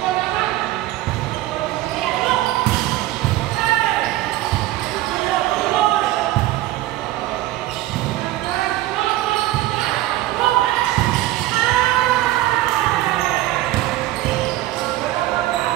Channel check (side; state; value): left; quieter; 15.8 dB